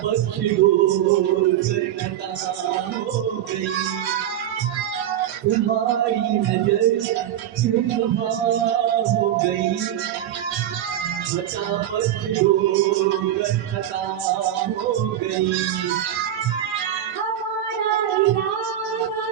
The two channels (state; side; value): quieter; left; 11.3 dB